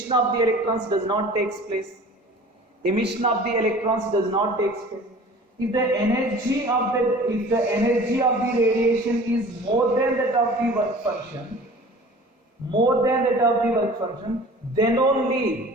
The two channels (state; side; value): normal; both; correlation 0.44